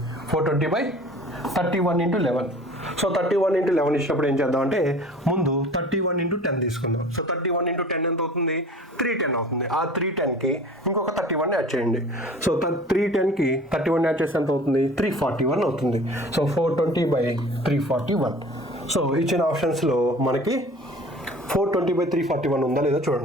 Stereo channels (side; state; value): both; normal; correlation 0.44